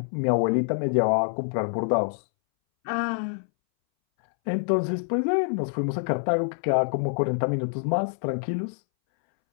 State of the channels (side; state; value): right; silent; 61 dB below the other